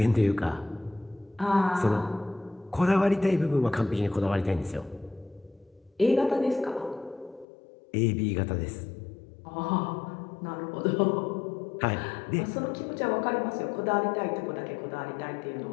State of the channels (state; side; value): drops out; right; at 7.5 s